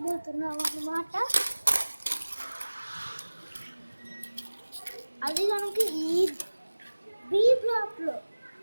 అన్నమాట. అది కనుక ఈ బి బ్లాక్లో,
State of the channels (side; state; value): both; inverted; correlation -1.00